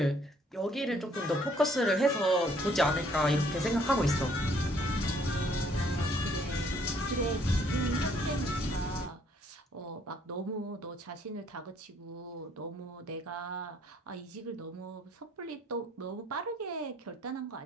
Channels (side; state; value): both; normal; correlation 0.64